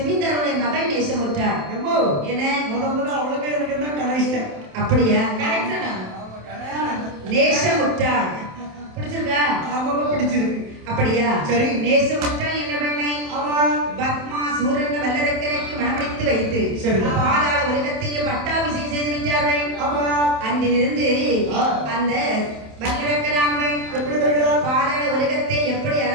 மகள் நேசமுற்றாள். என்ன முதல்ல அவளுக்கு எனக்கு என்ன கனெக்ஷன்? அப்படியா? கரெக்டா? நேசமுற்றாள் பிடிச்சிருக்கா? ஆமாமா பிடிச்சிருக்கு. அப்படியா? சரி. நேசமுற்றாள் என்ன பண்ணை? ஆமா பத்மா சூரன் வல்லரக்கரைக்கு மணமடித்து வைத்து பாதாள உலகத்தையே பட்டாபிஷேகம் செய்து விட்டார்கள். ஆமா அன்றிலிருந்து அந்த வல்லரக்கரானவள் எப்படி வருகிறார்? பாதாள உலகத்தை எப்படி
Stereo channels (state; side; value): late; left; 27 ms